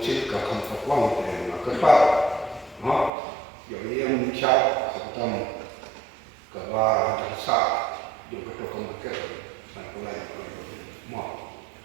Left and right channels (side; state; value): left; drops out; at 3.1 s